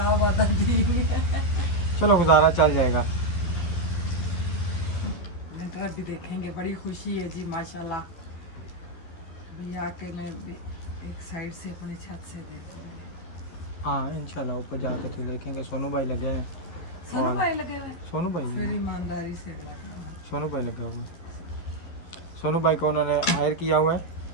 आधा ठीक है। चलो गुजारा चल जाएगा। लेंटर भी देखेंगे, बड़ी खुशी है जी माशाल्लाह। अभी आके मैं भी एक साइड से अपनी छत से देखूंगी। हाँ इंशाल्लाह ऊपर जाके तो देखेंगे। सोनू भाई लगे हैं। सोनू और भाई लगे हुए, सोनू भाई फिर ईमानदारी से लगे। सोनू भाई लगे हुए हैं। सोनू भाई को उन्होंने हायर किया हुआ है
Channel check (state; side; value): late; right; 12 ms